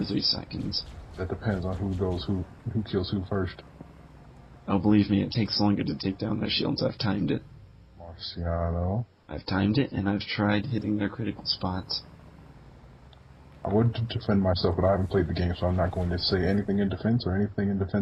3 seconds. That depends on who kills who first. Oh, believe me, it takes longer to take down their shields. I've timed it. Marciano. I've timed it, and I've tried hitting their critical spots. I would defend myself, but I haven't played the game, so I'm not going to say anything in defense or anything in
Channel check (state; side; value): identical; both; correlation 1.00